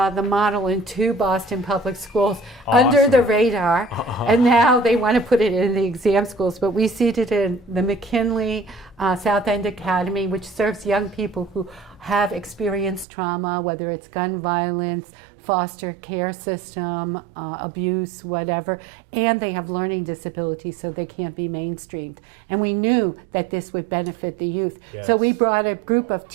model in 2 Boston public schools under the radar, and now they want to put it in the exam schools. But we seeded in the McKinley South End Academy, which serves young people who have experienced trauma, whether it's gun violence, foster care system, abuse, whatever, and they have learning disabilities, so they can't be mainstreamed. And we knew that this would benefit the youth. Yes. So we brought a group of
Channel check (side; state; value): left; drops out; at 13.1 s